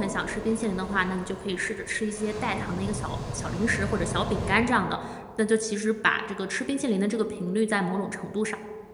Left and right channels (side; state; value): both; identical; correlation 1.00